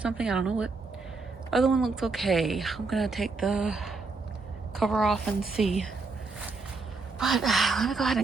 I don't know what. Other one looks okay. I'm gonna take the cover off and see. But let me go ahead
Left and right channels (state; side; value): quieter; left; 4.0 dB